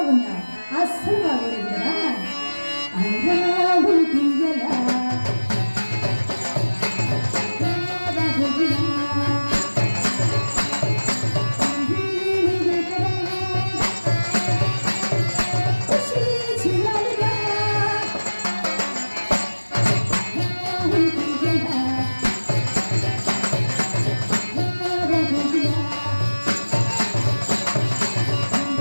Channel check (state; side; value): inverted; both; correlation -1.00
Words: అస్సలు బాగోలేదు కదా.